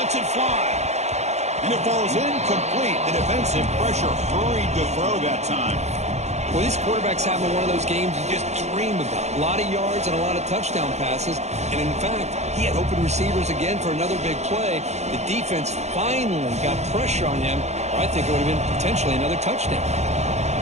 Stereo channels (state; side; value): late; left; 0.32 ms